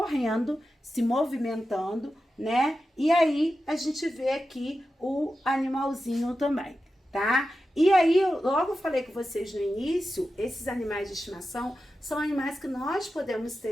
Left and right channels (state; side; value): normal; both; correlation 0.92